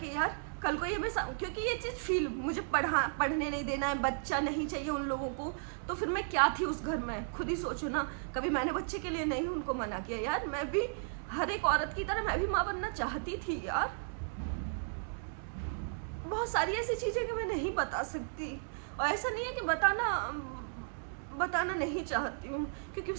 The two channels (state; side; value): silent; left; digital silence